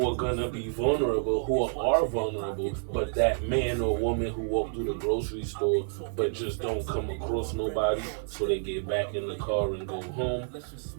are gonna be vulnerable, who are vulnerable, but that man or woman who walked through the grocery store but just don't come across nobody, so they get back in the car and go home,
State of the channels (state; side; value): silent; left; digital silence